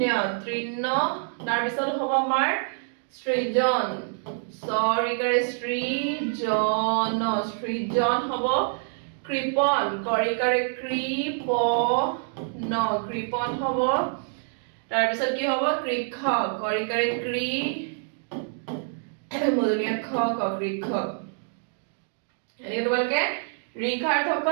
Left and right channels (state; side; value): silent; left; 61 dB below the other